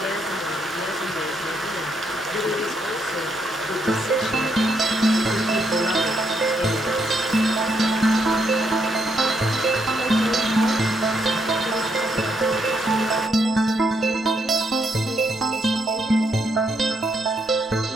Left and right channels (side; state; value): both; normal; correlation 0.76